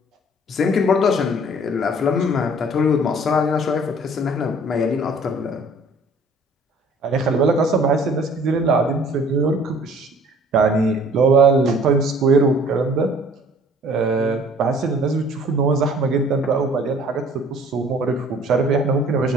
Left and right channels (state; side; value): normal; both; correlation 0.53